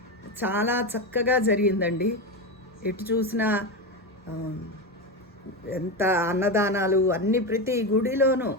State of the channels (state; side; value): normal; both; correlation 0.16